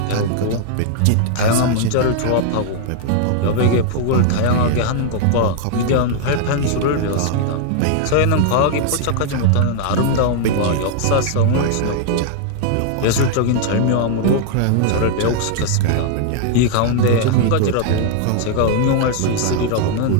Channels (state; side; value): different; both; correlation 0.00